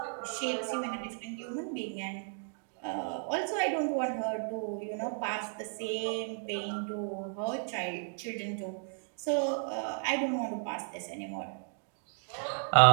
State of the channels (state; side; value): silent; left; 55 dB below the other